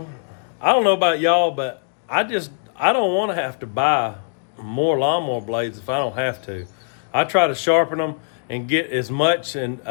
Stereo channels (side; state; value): right; silent; digital silence